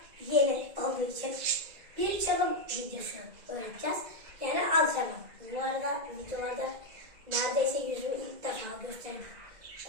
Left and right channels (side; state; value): left; late; 2.0 ms